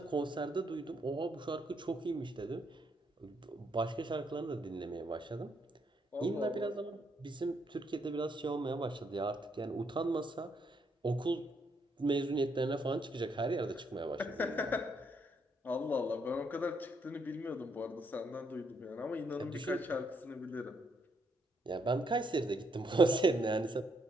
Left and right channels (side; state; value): both; normal; correlation 0.74